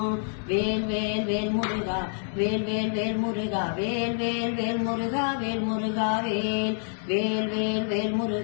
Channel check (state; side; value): silent; right; 60 dB below the other